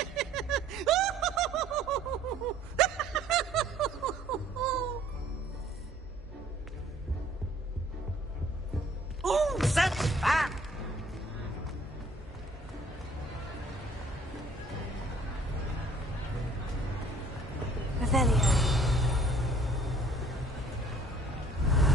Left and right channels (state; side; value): normal; both; correlation 0.57